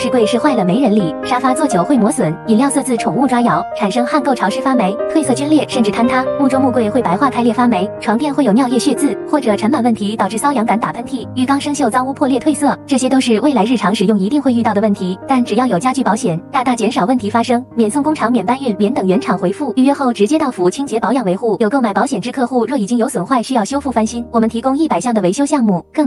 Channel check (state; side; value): identical; both; correlation 1.00